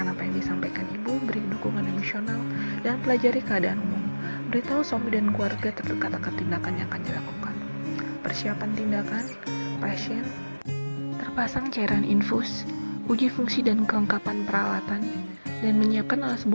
apa yang disampaikan ibu, beri dukungan emosional, dan pelajari keadaan umum. Beritahu suami dan keluarga terdekat akan tindakan yang akan dilakukan. Persiapan tindakan, pasien, terpasang cairan infus, uji fungsi dan kelengkapan peralatan, dan menyiapkan alas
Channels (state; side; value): inverted; both; correlation -1.00